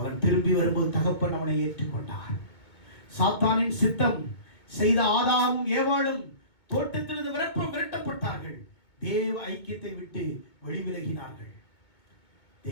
திரும்பி வரும்போது தகப்பன் அவனை ஏற்றுக்கொண்டார். சாத்தானின் சித்தம் செய்த ஆதாமும் ஏவாளும் தோட்டத்திலிருந்து விரட்டப்பட்டார்கள். தேவ ஐக்கியத்தை விட்டு வெளிவிலகினார்கள்.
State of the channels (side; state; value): right; late; 2.2 ms